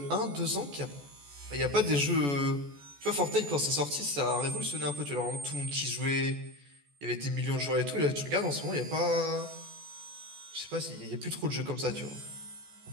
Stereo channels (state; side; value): late; left; 14 ms